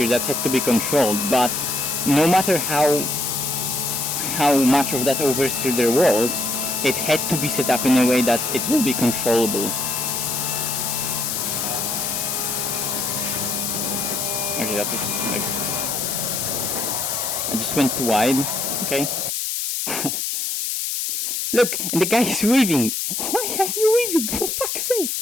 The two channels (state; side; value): noise; left; hiss, 1 dB below the sound